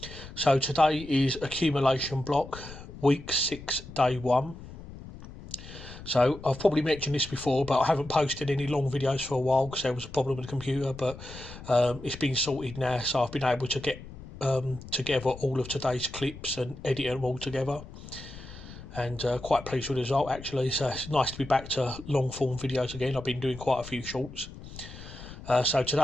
So today is accumulation block week 6 day 1. So I've probably mentioned this before, but I haven't posted any long videos for a while because there was a problem with the computer, but it's been sorted now, so I've been able to get together all of today's clips and edit them all together, and quite pleased with the result actually. So it's nice to be back to long form videos again. I've been doing quite a few shorts. So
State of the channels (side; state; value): left; noise; rumble, 14 dB below the sound